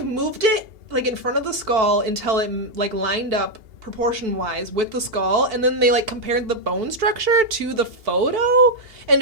moved it in front of the skull until it lined up proportion-wise with the skull, and then they compared the bone structure to the photo and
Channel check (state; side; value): late; left; 2.8 ms